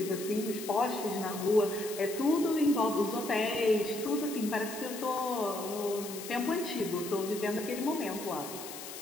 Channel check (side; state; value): left; noise; hiss, 11 dB below the sound